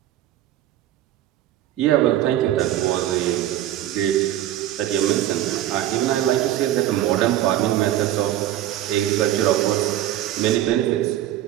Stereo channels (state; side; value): quieter; left; 13.0 dB